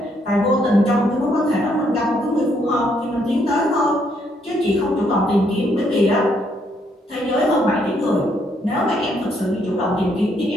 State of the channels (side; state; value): both; normal; correlation 0.72